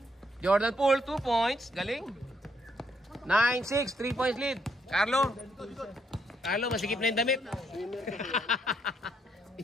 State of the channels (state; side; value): normal; both; correlation 0.74